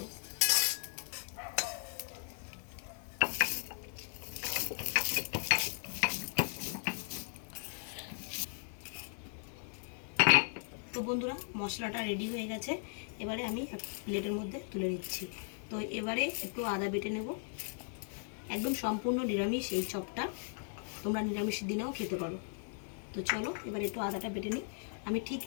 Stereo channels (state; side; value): silent; right; 53 dB below the other